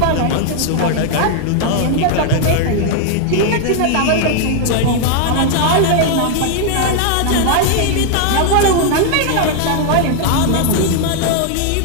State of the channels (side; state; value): both; different; correlation 0.00